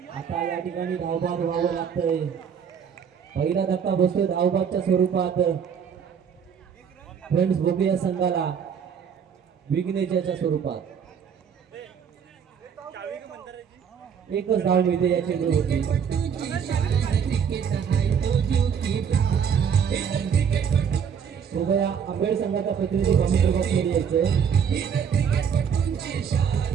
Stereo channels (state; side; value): quieter; left; 7.3 dB